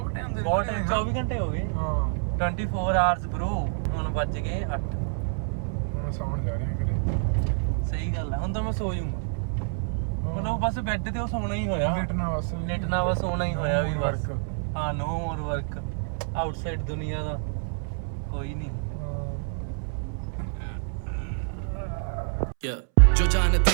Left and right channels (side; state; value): left; silent; 60 dB below the other